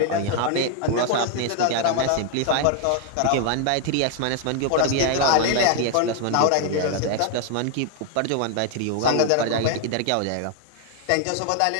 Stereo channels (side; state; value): both; different; correlation 0.00